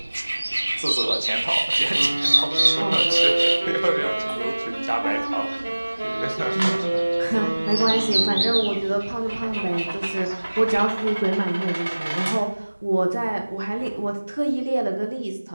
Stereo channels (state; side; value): inverted; both; correlation -1.00